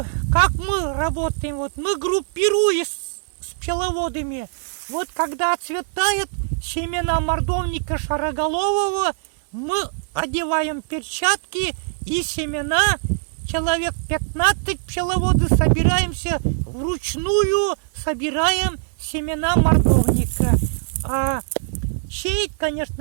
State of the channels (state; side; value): silent; left; 57 dB below the other